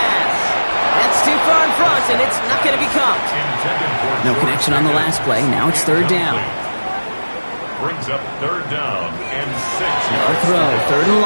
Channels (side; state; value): both; inverted; correlation -1.00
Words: That's too far in front, and it's not going to be caught. No connection on the last play. Now it's 3rd down. Brings up 3rd down and 6. No throw, 3rd and